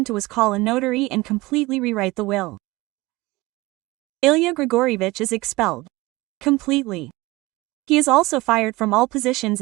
to was call a notary and completely rewrite the will. Ilya Grigorievich is expelled. Completely. He is also fired from all positions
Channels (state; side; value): quieter; left; 20.8 dB